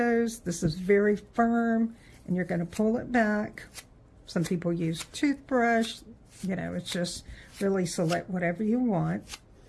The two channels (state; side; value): identical; both; correlation 1.00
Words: This is very firm, and you're going to pull it back. Some people use toothbrush. It's just really select whatever you want.